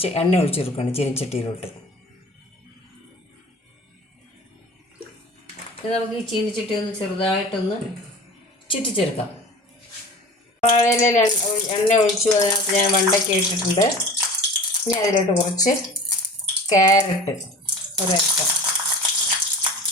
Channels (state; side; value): normal; both; correlation 0.39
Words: എണ്ണ ഒഴിച്ചു കൊടുക്കുകയാണ് ചീനിച്ചട്ടിയിലോട്ട്. നമുക്ക് ഈ ചീനിച്ചട്ടി ഒന്ന് ചെറുതായിട്ടൊന്ന് ചുറ്റിച്ചെടുക്കാം. വാഴയില എണ്ണ ഒഴിച്ചു, അതിനകത്ത് ഞാൻ വെണ്ടയ്ക്ക ഇട്ടിട്ടുണ്ട്. ഇനി അതിലോട്ട് കുറച്ച് ക്യാരറ്റ് ഒരൽപ്പം.